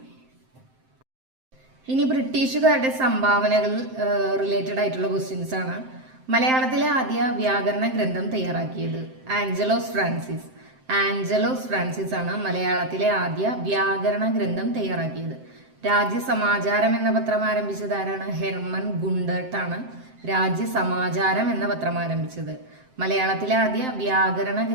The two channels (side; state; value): left; late; 7.7 ms